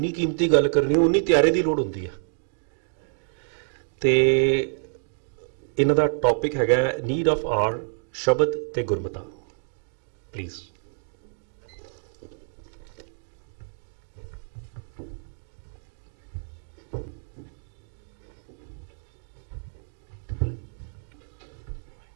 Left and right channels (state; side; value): silent; left; digital silence